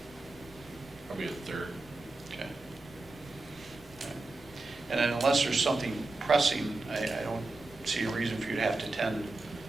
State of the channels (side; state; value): left; quieter; 3.2 dB